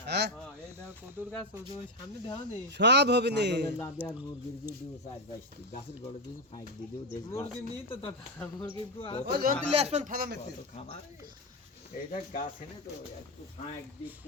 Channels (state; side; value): normal; both; correlation 0.09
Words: হ্যাঁ হ্যাঁ এই দাও কদুর গাছ ওই সামনে দেও নি সব হবে নি ছাগলের লাদে আর মুরগির দিয়ে দিও 4-5টি গাছের গড়ে দিয়ে ফাইক দিয়ে দিও দেখ মুরগি নি তো দাদা মুরগি কো ও যন্ত্র লিয়ে আসবেন ফালা মেতে খাবার এইটা গাছ এনে তো একটু ফাইক দিয়ে